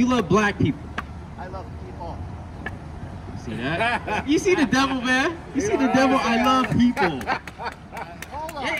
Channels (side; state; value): both; identical; correlation 1.00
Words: love black people. I love people. See that? You see the devil, man? You see the devil? I love people. Hold on.